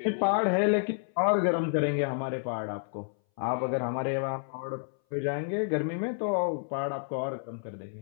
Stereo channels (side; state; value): right; silent; 58 dB below the other